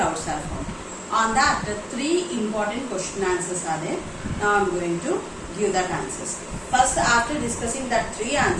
are formed. On that, three important question answers are there. Now I am going to give that answers. First, after discussing that three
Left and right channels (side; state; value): both; identical; correlation 1.00